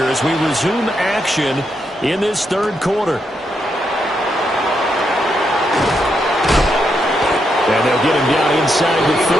as we resume action in this third quarter. And they'll get him down inside the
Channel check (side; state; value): both; normal; correlation 0.81